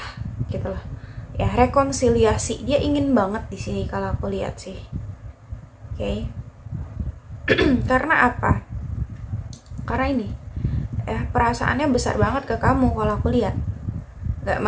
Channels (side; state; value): both; identical; correlation 1.00